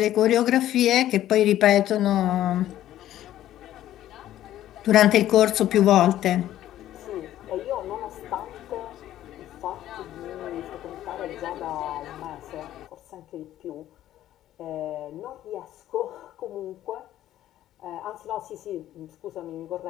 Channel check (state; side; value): quieter; right; 12.9 dB